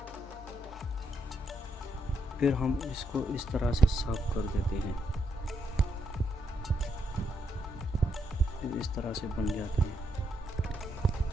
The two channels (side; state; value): both; normal; correlation 0.78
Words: फिर हम इसको इस तरह से साफ कर देते हैं, फिर इस तरह से बन जाते हैं।